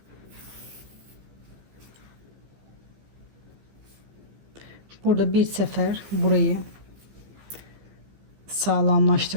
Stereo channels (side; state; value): left; late; 15 ms